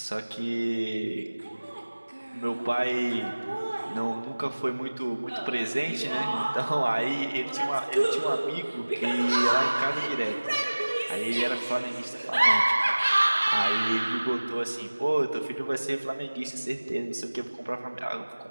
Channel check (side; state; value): both; inverted; correlation -1.00